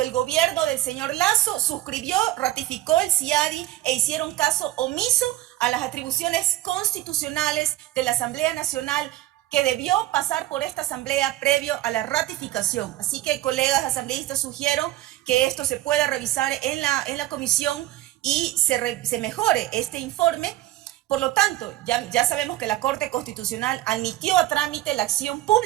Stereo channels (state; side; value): quieter; left; 15.4 dB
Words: el gobierno del señor Lasso suscribió, ratificó el CIADI e hicieron caso omiso a las atribuciones constitucionales de la Asamblea Nacional, que debió pasar por esta asamblea previo a la ratificación. Así que, colegas asambleístas, sugiero que esto se pueda revisar en la comisión y se mejore este informe. Por lo tanto, ya sabemos que la Corte Constitucional admitió a trámite la acción